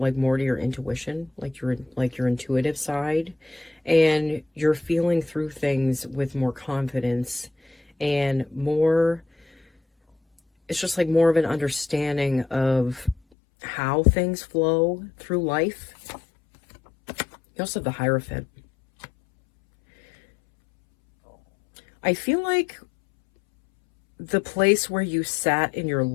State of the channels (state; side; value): drops out; right; at 13.2 s